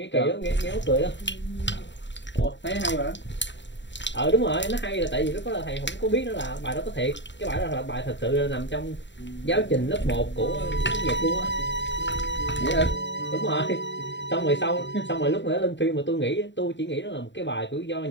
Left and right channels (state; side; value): late; right; 0.53 ms